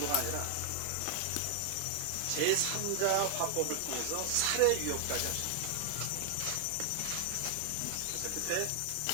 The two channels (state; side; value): different; both; correlation 0.00